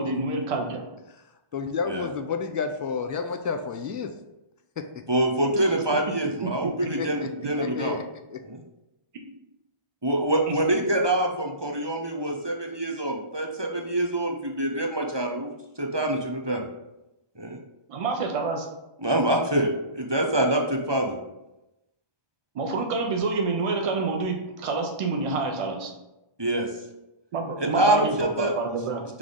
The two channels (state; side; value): late; left; 1.2 ms